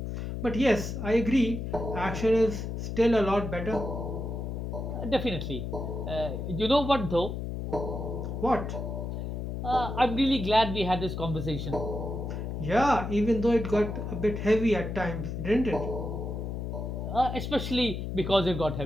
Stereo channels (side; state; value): left; noise; hum, 4 dB below the sound